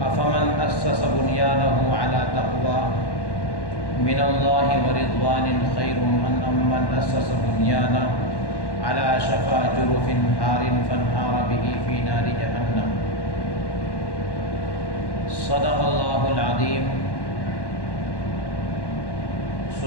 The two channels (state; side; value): late; right; 1.1 ms